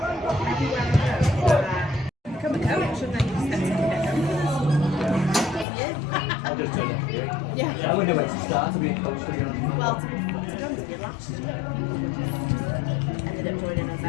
Become a coach, shouldn't I? I'll just turn it. Yeah. I wonder where to start to be a coach, to be honest. Well, to be honest with you, last year ended up joining us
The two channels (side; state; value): right; drops out; at 5.7 s